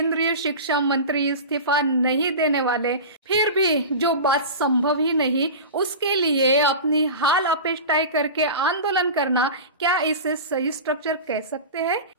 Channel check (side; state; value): both; inverted; correlation -0.30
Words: शिक्षा मंत्री इस्तीफा नहीं देने वाले, फिर भी जो बात संभव ही नहीं उसके लिए अपनी हाल अपेष्टाई करके आंदोलन करना, क्या इसे सही स्ट्रक्चर कह सकते हैं?